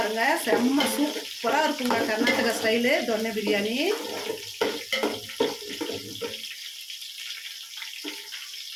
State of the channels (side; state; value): both; identical; correlation 1.00